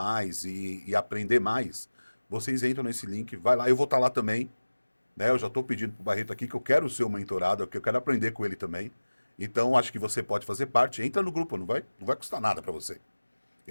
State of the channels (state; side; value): inverted; both; correlation -1.00